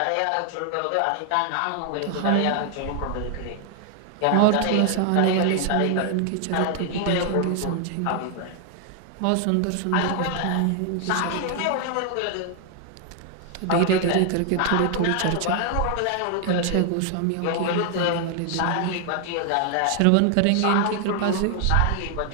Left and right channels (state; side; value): different; both; correlation 0.00